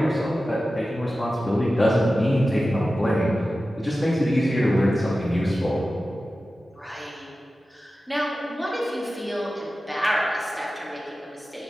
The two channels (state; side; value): normal; both; correlation 0.94